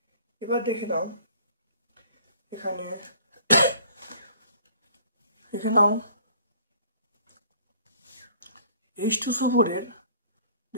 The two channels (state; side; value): inverted; both; correlation -0.54